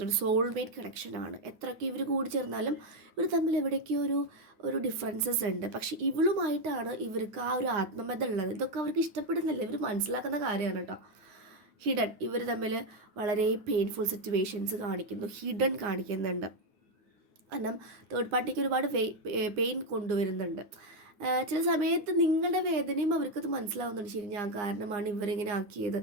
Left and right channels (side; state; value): left; late; 9.7 ms